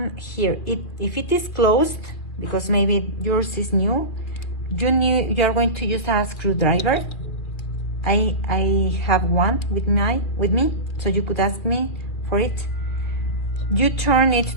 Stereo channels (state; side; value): late; right; 2.2 ms